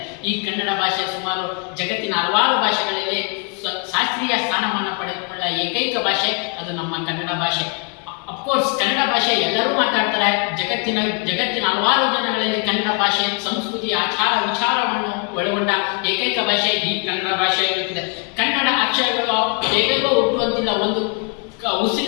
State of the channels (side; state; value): right; quieter; 39.0 dB